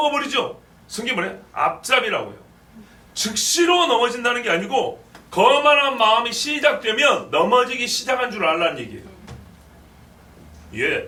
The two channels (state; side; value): identical; both; correlation 1.00